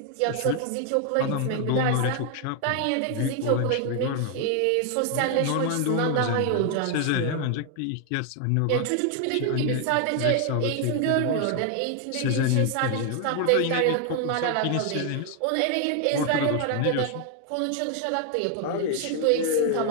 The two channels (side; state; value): both; different; correlation 0.00